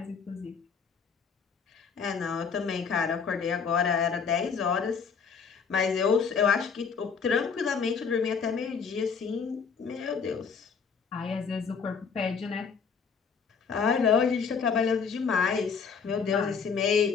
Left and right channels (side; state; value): right; quieter; 5.9 dB